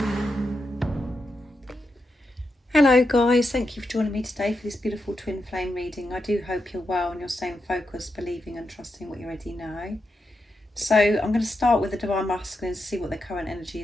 Hello guys, thank you for joining me today for this beautiful twin flame reading. I do hope you're well and you're staying focused, believing and trusting what you already know. So I'm going to start with the Divine Masculine to see what their current energy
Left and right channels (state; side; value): normal; both; correlation 0.86